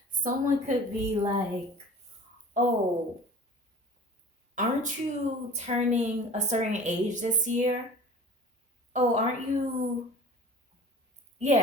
Someone could be like, oh, aren't you turning a certain age this year? Oh, aren't you?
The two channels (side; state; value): both; normal; correlation 0.42